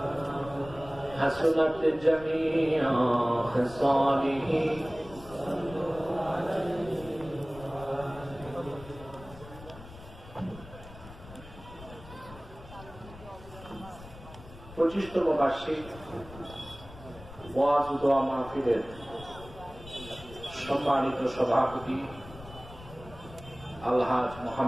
حسنت جميع خصاله পঁচিশতম বার্ষিক ওয়াজ ও দোয়া মাহফিলের সম্মানিত সভাপতি আলহাজ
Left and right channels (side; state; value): left; noise; rumble, 17 dB below the sound